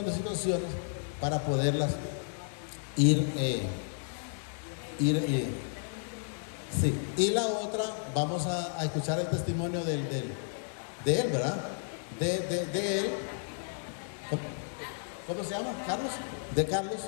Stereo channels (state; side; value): silent; right; digital silence